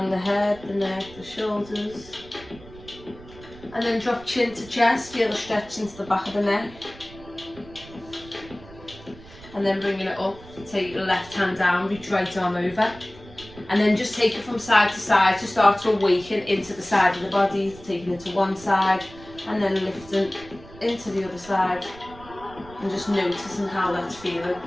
the head, the neck, the shoulders. And then drop chin to chest, feel the stretch into the back of the neck. And then bringing it up, take your left hand down, reach right arm over. And then just take it from side to side to start to awaken into the side of the body, taking it to one side and then lifting into the other side. And just noticing how that's feeling.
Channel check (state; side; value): noise; right; rumble, 19 dB below the sound